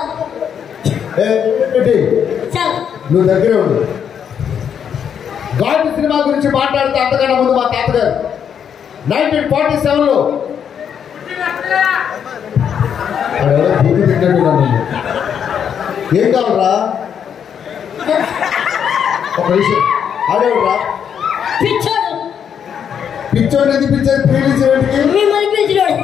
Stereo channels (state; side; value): quieter; right; 8.1 dB